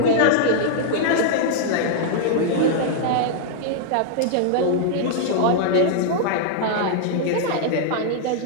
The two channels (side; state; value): both; different; correlation -0.01